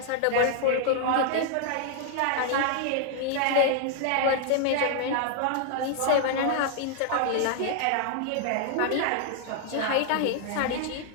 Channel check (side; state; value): both; different; correlation 0.00